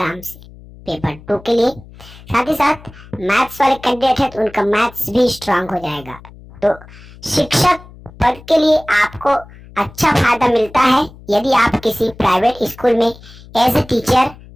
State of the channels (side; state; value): left; noise; hum, 20 dB below the sound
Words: से पेपर 2 के लिए। साथ ही साथ मैथ्स वाले कैंडिडेट है तो उनका मैथ्स भी स्ट्रांग हो जाएगा। तो शिक्षक पद के लिए आपको अच्छा फायदा मिलता है यदि आप किसी प्राइवेट स्कूल में एज ए टीचर